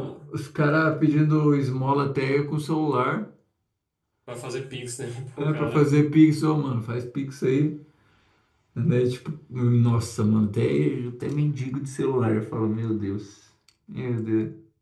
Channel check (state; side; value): identical; both; correlation 1.00